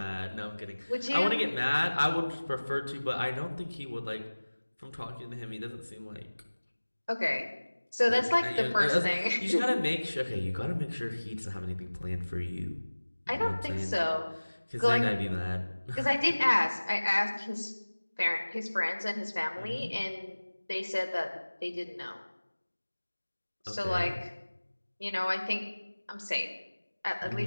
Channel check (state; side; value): inverted; both; correlation -1.00